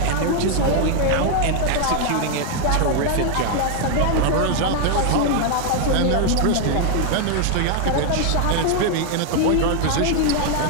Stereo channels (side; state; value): both; different; correlation 0.00